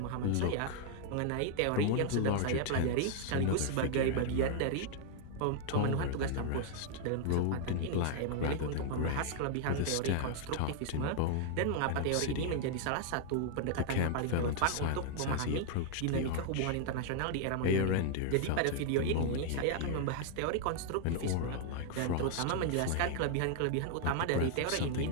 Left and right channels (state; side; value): different; both; correlation 0.00